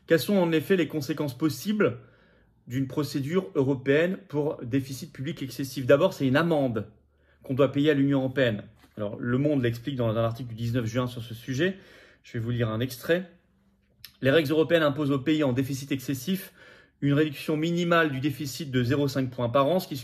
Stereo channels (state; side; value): identical; both; correlation 1.00